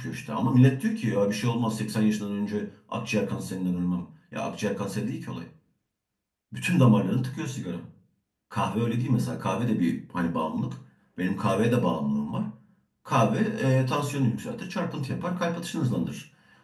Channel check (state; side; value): identical; both; correlation 1.00